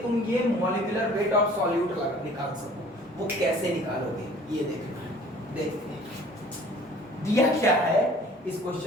तुम ये मॉलिक्यूलर वेट ऑफ सॉल्यूट निकाल सको। वो कैसे निकालोगे ये देखना है। देखते हैं दिया क्या है इस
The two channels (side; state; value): both; normal; correlation 0.50